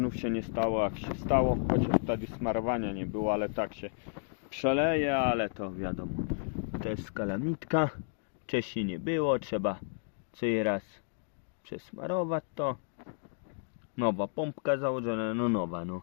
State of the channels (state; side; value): silent; right; digital silence